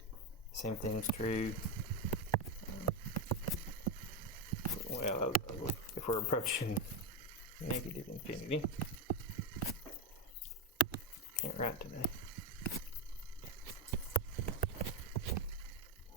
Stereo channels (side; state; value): both; normal; correlation 0.10